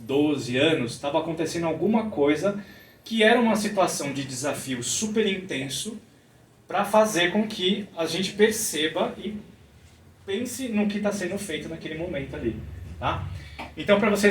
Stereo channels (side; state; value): both; identical; correlation 1.00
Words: 12 anos estava acontecendo alguma coisa que era uma situação de desafio super intenso para fazer com que a gente perceba e pense no que está sendo feito naquele momento ali, tá? Então, para